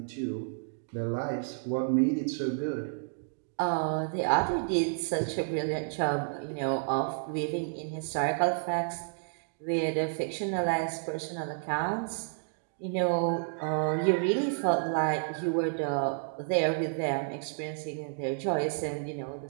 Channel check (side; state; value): left; silent; digital silence